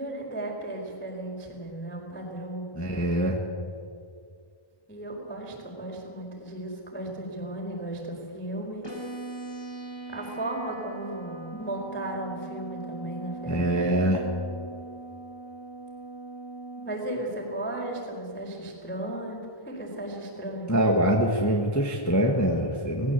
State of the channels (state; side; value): late; right; 1.1 ms